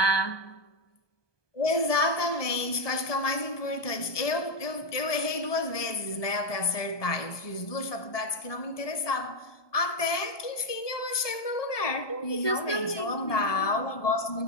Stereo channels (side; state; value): right; late; 1.2 ms